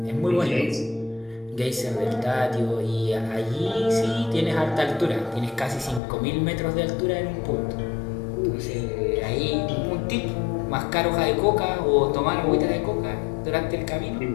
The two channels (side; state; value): right; drops out; at 6.0 s